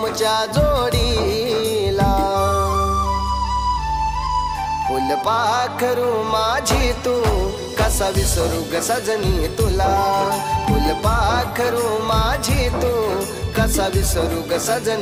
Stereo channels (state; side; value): identical; both; correlation 1.00